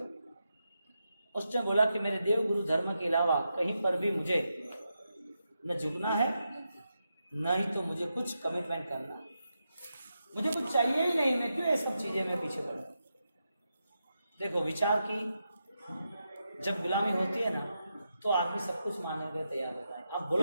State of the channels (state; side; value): inverted; both; correlation -0.87